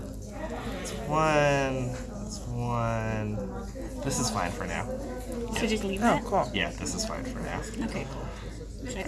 one. That's one. This is fine for now. So just leave Oh, that? cool. Yeah, this is fine for now. Okay, cool. Should I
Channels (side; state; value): both; identical; correlation 1.00